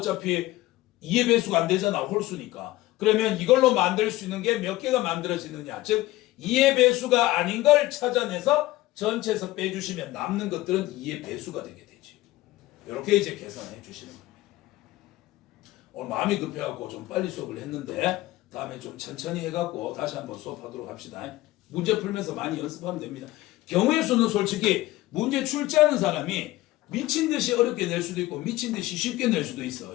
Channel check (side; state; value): right; quieter; 17.4 dB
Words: 2의 배수가 안 되잖아. 홀수니까. 그러면 이걸로 만들 수 있는 게 몇 개가 만들어지느냐. 즉 2의 배수가 아닌 걸 찾아내서 전체에서 빼주시면 남는 것들은 2의 배수가 되게 되지. 이렇게 이제 계산해 주시는 겁니다. 오늘 마음이 급해갖고 좀 빨리 수업을 했는데 다음에 좀 천천히 해갖고 다시 한번 수업하도록 합시다. 문제 풀면서 많이 연습하면 됩니다. 경우의 수는 솔직히 문제 출제하는 사람이 미친 듯이 어렵게 낼 수도 있고 미친 듯이 쉽게 낼 수도 있어.